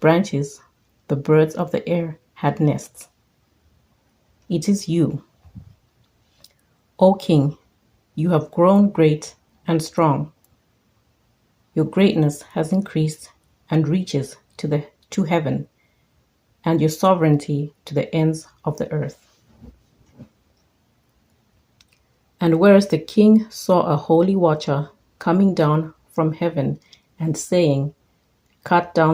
the birds of the air had nests. It is you, O king, you have grown great and strong. Your greatness has increased and reaches to heaven, and your sovereignty to the ends of the earth. And whereas the king saw a holy watcher coming down from heaven and saying, Cut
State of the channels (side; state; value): both; identical; correlation 1.00